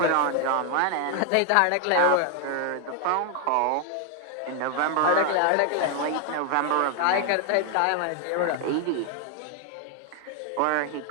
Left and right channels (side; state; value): both; different; correlation 0.00